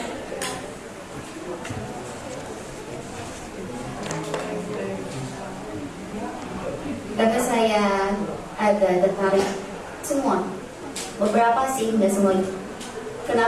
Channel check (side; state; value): both; identical; correlation 1.00